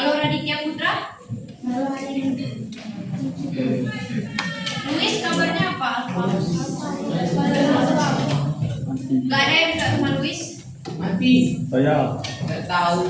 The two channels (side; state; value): both; identical; correlation 1.00